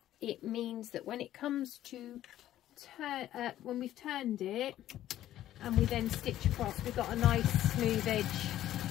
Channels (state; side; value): quieter; right; 12.9 dB